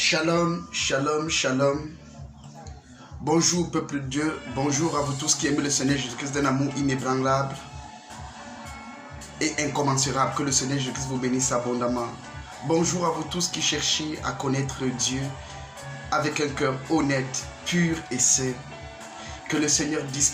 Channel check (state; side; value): identical; both; correlation 1.00